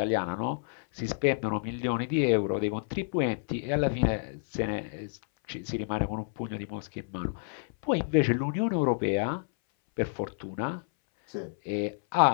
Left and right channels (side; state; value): right; silent; 58 dB below the other